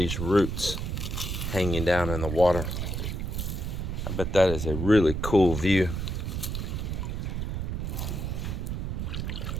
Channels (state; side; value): noise; right; rumble, 2 dB below the sound